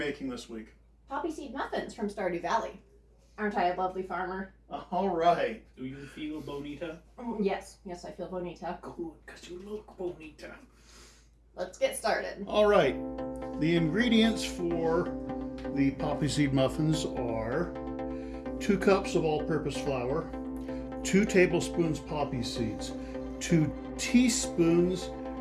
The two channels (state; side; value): identical; both; correlation 1.00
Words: this week? Poppyseed Muffins from Stardew Valley. Aren't I a lovely farmer? All right. Do you feel bonita? Yes, I feel bonita. Good, because you look bonita. Let's get started. All right. The ingredients for the Poppyseed Muffins are 2 cups of all-purpose flour, 2 tablespoons poppy seeds, 2 teaspoons